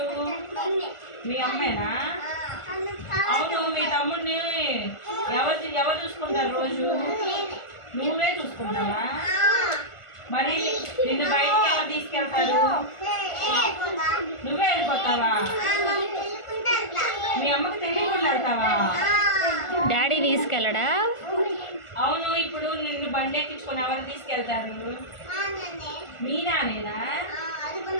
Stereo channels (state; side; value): late; right; 1.4 ms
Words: మీ అమ్మేనా? అవును, మీ తమ్ముడిని ఎవరు చూసుకుంటారు రోజు? నువ్వే చూసుకుంటావా? మరి నిన్ను బయటకి ఎవరు తీసుకెళ్తారు? నువ్వే వెళ్ళిపోతావా? మీ అమ్మకి తెలియకుండా వెళ్తావా? డాడీ తీసుకెళ్ళడా? అవును, ఇప్పుడు నిన్ను బండి ఎక్కించుకొని ఎవరు తీసుకెళ్తారు? మీ నానేనా?